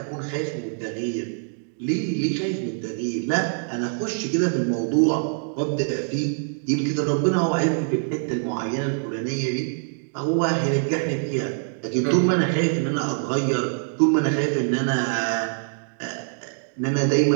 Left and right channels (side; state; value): left; silent; digital silence